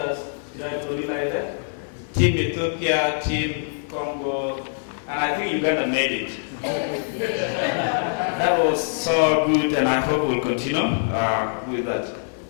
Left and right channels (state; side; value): silent; right; digital silence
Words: Team Ethiopia, Team Congo, and I think Uganda made it. That was so good, and I hope we'll continue with that.